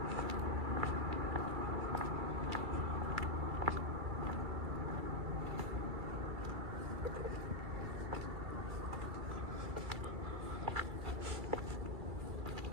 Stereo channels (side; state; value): left; late; 2.3 ms